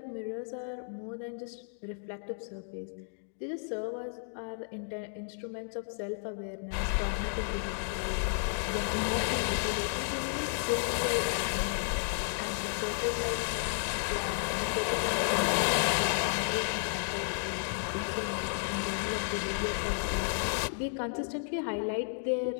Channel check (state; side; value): silent; right; digital silence